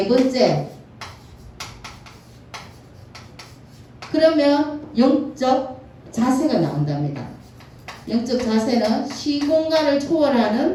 번째. 그러면 영적 자세가 나온답니다. 영적 자세는 시공간을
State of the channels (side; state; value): both; identical; correlation 1.00